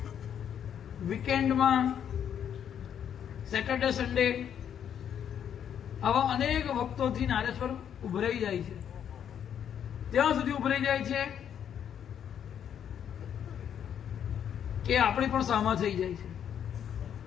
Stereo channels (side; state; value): right; quieter; 8.9 dB